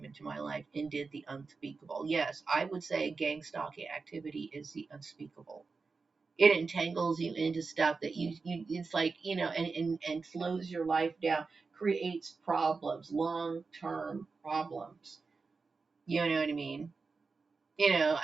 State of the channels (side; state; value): left; quieter; 4.4 dB